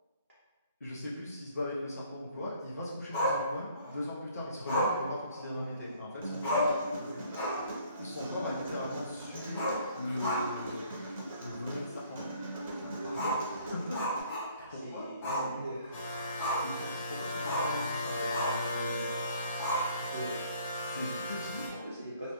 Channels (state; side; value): inverted; both; correlation -0.59